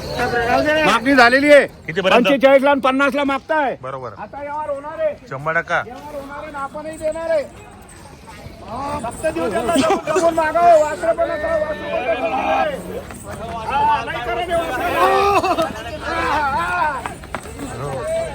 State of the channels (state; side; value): identical; both; correlation 1.00